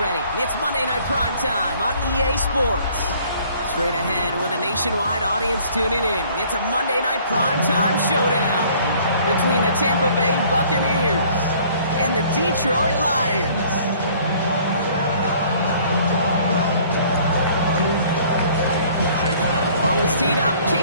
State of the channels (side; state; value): both; inverted; correlation -0.56